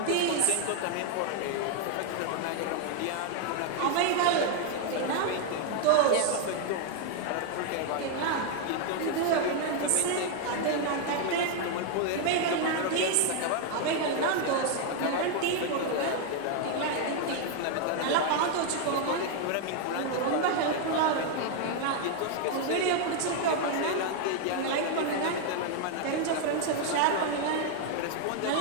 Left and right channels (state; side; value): different; both; correlation 0.00